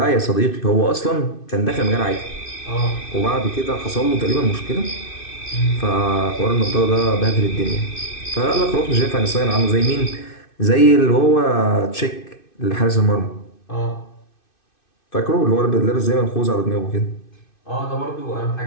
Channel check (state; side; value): late; right; 2.6 ms